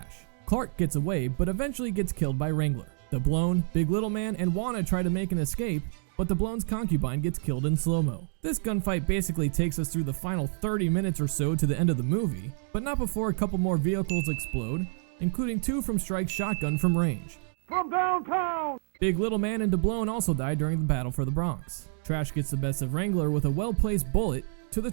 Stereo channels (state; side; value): silent; left; digital silence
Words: Clark gets away, but eventually gets killed by Wrangler. Doubloon, Big Little Man, and Juana try to make an escape, but Doubloon's concubine gets killed in slow-mo. This gunfight basically takes us through the final 30 minutes or so to the end of the movie, but not before a couple more vehicles explode, including two from Strike's shotgun from range. From downtown! Big Little Man and Doubloon also die during the battle for the Bronx. Trash gets the best of Wrangler with a well-placed bullet to the